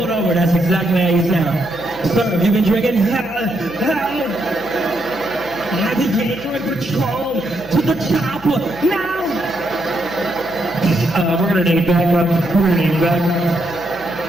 over, that's exactly how you sound. Sir, have you been drinking? Navigator patrol to the chopper. Now. We're gonna need backup. We're gonna need backup.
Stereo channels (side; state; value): right; noise; hum, 23 dB below the sound